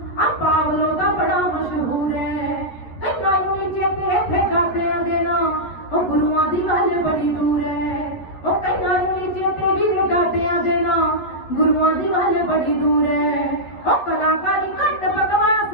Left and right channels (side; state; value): right; late; 11 ms